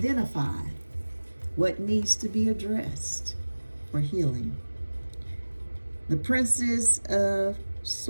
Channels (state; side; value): inverted; both; correlation -1.00